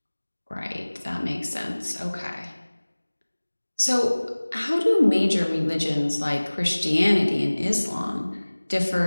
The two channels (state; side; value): inverted; both; correlation -1.00